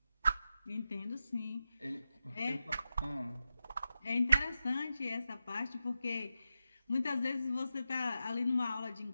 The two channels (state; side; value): inverted; both; correlation -0.90